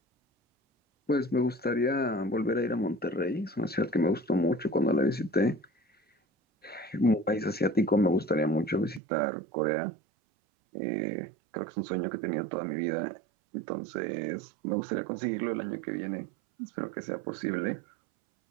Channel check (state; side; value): drops out; left; at 9.0 s